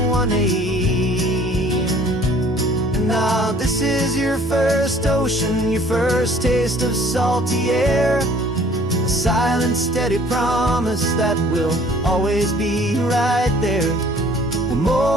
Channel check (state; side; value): normal; both; correlation 0.55